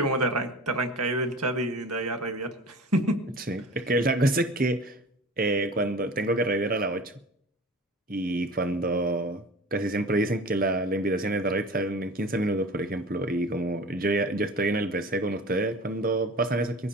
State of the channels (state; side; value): normal; both; correlation 0.39